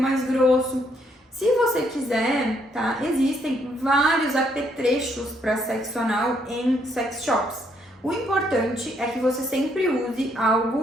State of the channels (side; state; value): both; normal; correlation 0.72